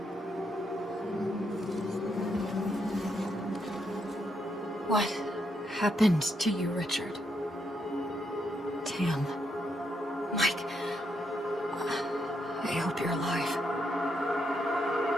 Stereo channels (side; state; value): both; normal; correlation 0.78